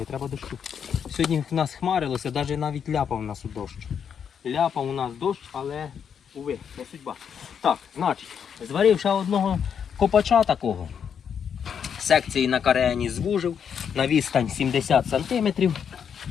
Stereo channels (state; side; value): quieter; right; 7.6 dB